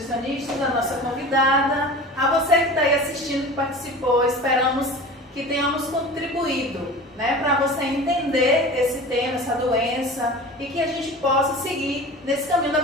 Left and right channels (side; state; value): both; normal; correlation 0.36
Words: a nossa convidada, a você que está aí assistindo, que participou. Esperamos que tenhamos contribuído, né, para você entender esse tema, essa doença, e que a gente possa seguir nesse caminho da